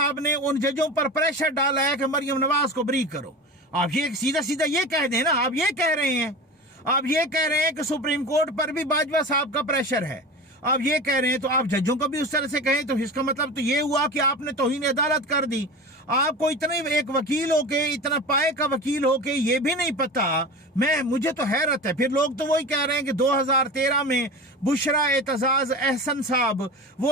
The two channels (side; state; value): both; normal; correlation 0.31